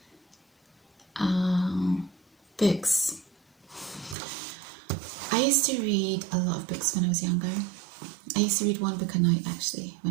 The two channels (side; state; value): left; drops out; at 4.2 s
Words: Books. I used to read a lot of books when I was younger. I used to read one book a night actually